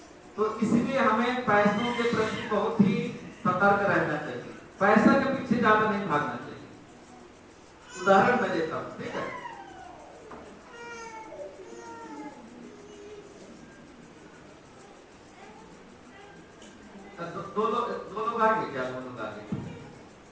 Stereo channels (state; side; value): identical; both; correlation 1.00